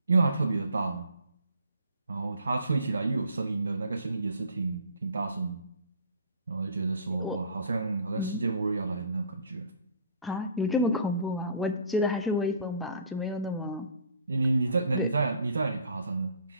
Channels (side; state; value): both; inverted; correlation -0.51